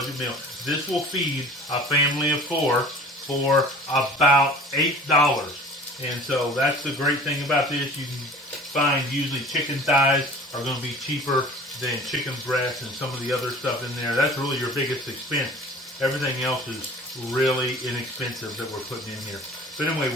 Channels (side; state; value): both; normal; correlation 0.44